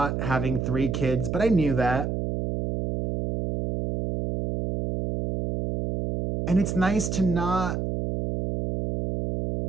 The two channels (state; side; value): noise; right; hum, 2 dB below the sound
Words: having 3 kids, but I knew that. And it's nice to not,